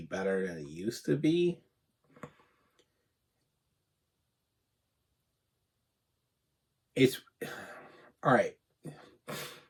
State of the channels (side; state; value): both; identical; correlation 1.00